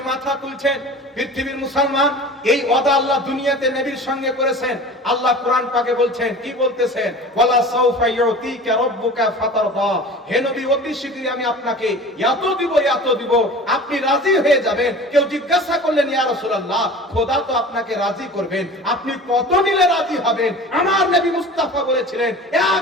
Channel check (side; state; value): both; normal; correlation 0.39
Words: মাথা তুলছেন। পৃথিবীর মুসলমান, এই ওয়াদা আল্লাহ দুনিয়াতে নবীর সঙ্গে করেছেন। আল্লাহ কোরআন পাকে বলছেন, কি বলতেছেন? ওয়ালা সাউফা ইউতিকা রাব্বুকা ফাতারদা, হে নবী অতি শীঘ্রই আমি আপনাকে এত দিব, এত দিব, আপনি রাজি হয়ে যাবেন। কেউ জিজ্ঞাসা করলেন ইয়া রাসূলুল্লাহ, খোদা তো আপনাকে রাজি করবেন, আপনি কত নিলে রাজি হবেন? আমার নবী মুস্তাফা বলেছিলেন